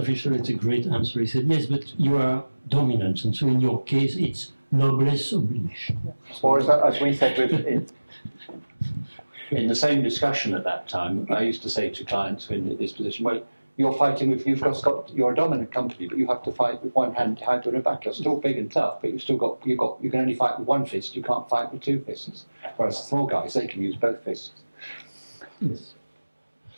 had a great answer. He said, yes, but you are dominant, and so in your case, it's noblesse oblige. Or as we said in the same discussion at that time, I used to say to clients in this position, well, you're fighting with, you're a dominant company, but you have to fight with one hand tied to the back. You're still big and tough, but you can only fight with one fist. You can't fight with two fists. Whereas the small guys, they can use both fists. Yes.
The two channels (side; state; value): both; inverted; correlation -1.00